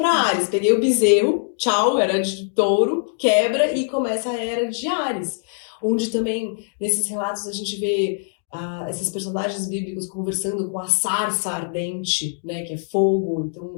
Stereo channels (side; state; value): right; silent; digital silence